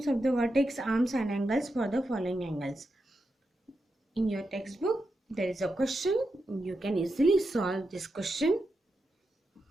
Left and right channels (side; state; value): both; normal; correlation 0.87